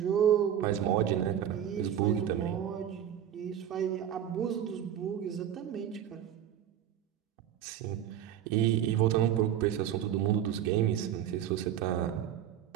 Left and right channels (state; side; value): quieter; left; 10.2 dB